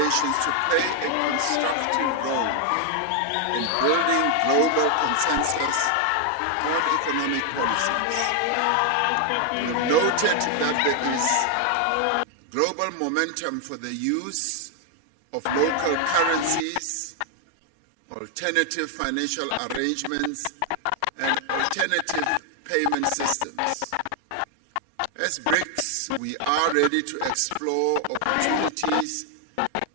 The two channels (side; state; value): both; different; correlation 0.00